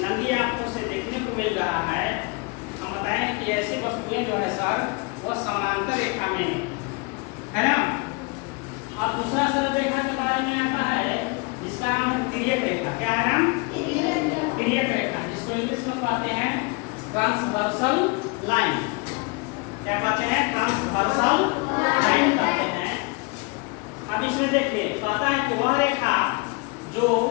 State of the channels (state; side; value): quieter; right; 28.5 dB